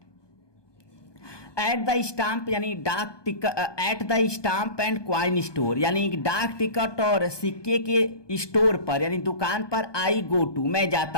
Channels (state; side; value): late; right; 1.2 ms